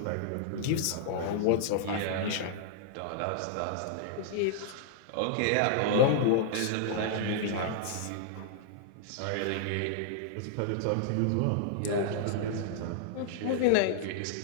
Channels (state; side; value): different; both; correlation -0.01